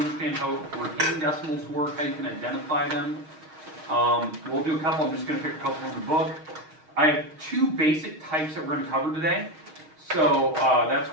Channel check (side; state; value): left; late; 6.4 ms